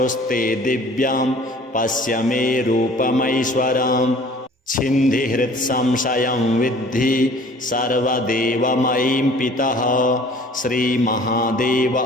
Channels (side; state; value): both; normal; correlation 0.50